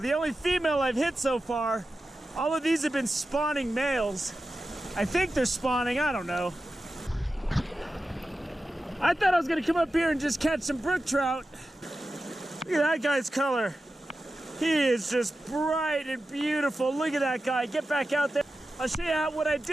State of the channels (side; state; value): both; normal; correlation 0.93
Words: only female I've hit so far. All of these have been spawning males. I think they're spawning, I don't know. I thought I was gonna come up here and just catch some brook trout. Look at that guy's color. He is just bright and beautiful. Look at that guy, get back out there. I'll show you what I